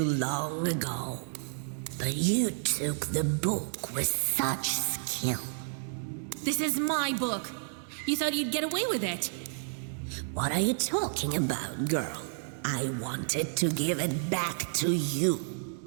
long ago. But you took the book with such skill. This is my book. You thought you'd get away with it. What are you talking about, girl? I wanted to give it back to you.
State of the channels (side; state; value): left; silent; digital silence